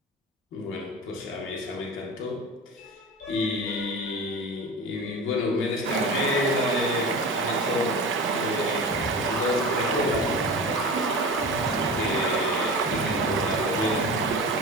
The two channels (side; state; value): both; normal; correlation 0.31